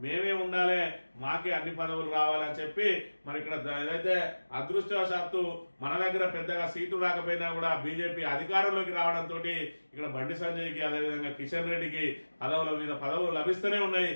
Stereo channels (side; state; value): both; inverted; correlation -1.00